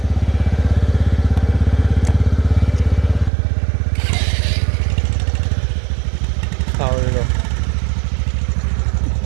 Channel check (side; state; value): left; drops out; at 3.3 s